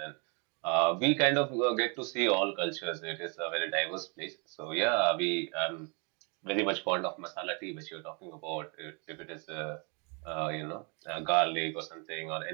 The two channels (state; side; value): quieter; left; 34.2 dB